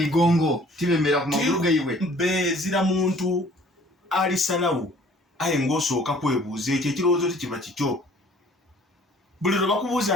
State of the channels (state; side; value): normal; both; correlation 0.54